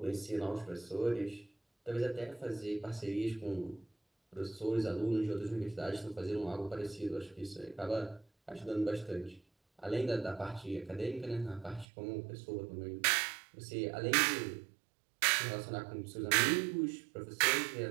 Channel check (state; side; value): drops out; left; at 11.9 s